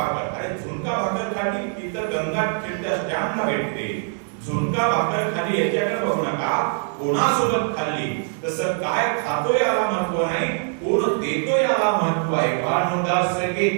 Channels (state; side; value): silent; left; 57 dB below the other